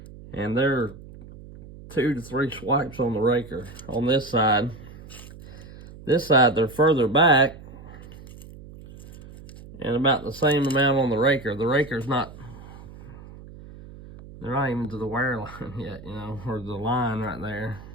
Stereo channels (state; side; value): noise; right; hum, 17 dB below the sound